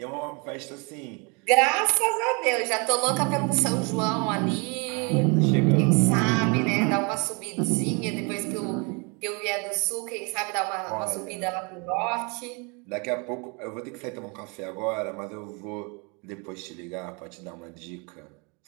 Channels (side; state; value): left; quieter; 31.7 dB